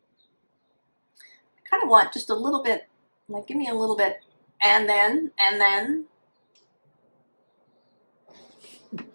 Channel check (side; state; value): both; inverted; correlation -1.00